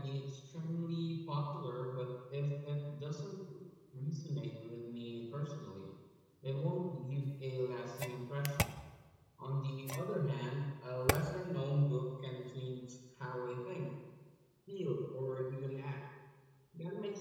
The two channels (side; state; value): both; identical; correlation 1.00